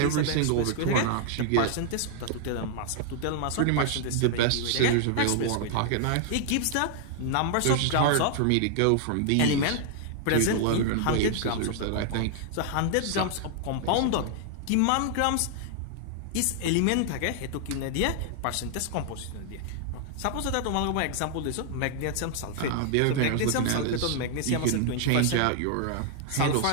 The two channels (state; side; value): different; both; correlation 0.00